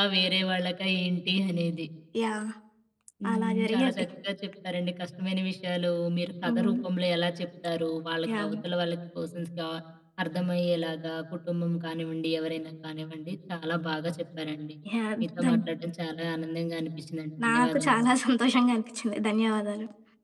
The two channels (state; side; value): identical; both; correlation 1.00